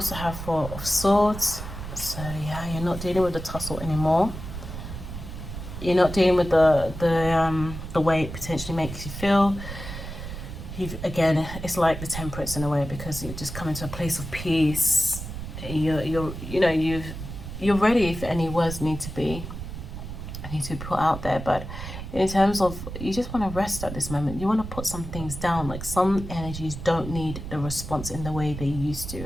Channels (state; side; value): noise; right; rumble, 9 dB below the sound